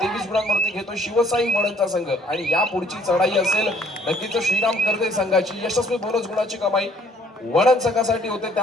गुणांवरती खेळतो शिवसाई वडनचा संघ. आणि या पुढची चढाई असेल नक्कीच श्रीराम करते संघाची. यशस्वी बोनस गुणाची कमाई वडन संघासाठी होते.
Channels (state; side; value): normal; both; correlation 0.61